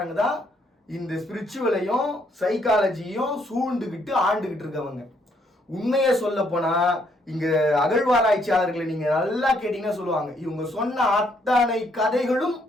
தான் இந்த ஸ்பிரிச்சுவலையும் சைக்காலஜியும் சூழ்ந்துகிட்டு ஆண்டுகிட்டு இருக்கவங்க. உண்மையை சொல்ல போனா இங்க அகழ்வாராய்ச்சியாளர்களை நீங்க நல்லா கேட்டீங்கன்னா சொல்லுவாங்க, இவங்க சொன்ன அத்தனை கதைகளும்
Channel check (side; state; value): both; normal; correlation 0.70